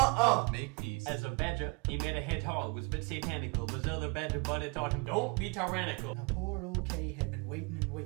Make peace." As a badger, he made a hedgehog, was a bit satanical. Was other badger, but it taught him, don't be tyrannical. Now poor old Kay had been waiting and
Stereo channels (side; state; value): left; quieter; 30.4 dB